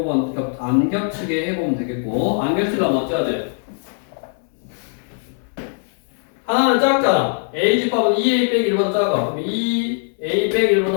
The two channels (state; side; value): silent; right; 60 dB below the other